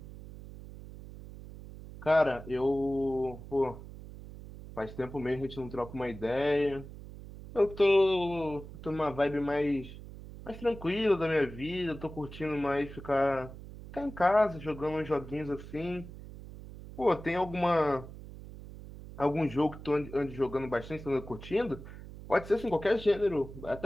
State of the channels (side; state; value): right; noise; hum, 14 dB below the sound